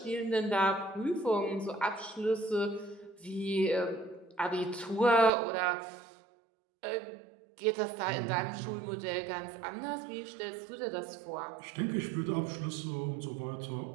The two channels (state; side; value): drops out; left; at 5.3 s